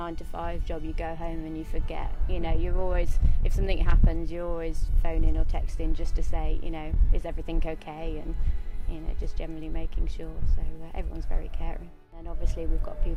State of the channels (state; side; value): identical; both; correlation 1.00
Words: job. You go home and you forget, you know, you're always, if something happens, you're always phoning or texting just to say, you know, is everything okay, and, you know, just generally making sure. So everyone's very caring. And obviously we've got